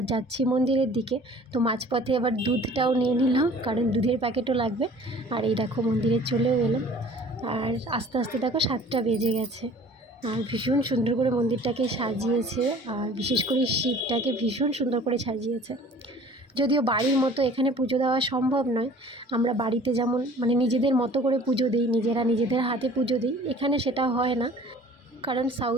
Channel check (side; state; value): both; normal; correlation 0.48